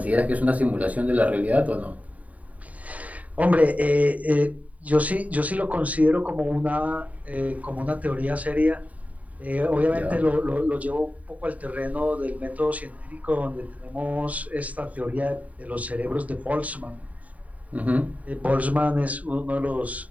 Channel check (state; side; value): late; left; 0.070 ms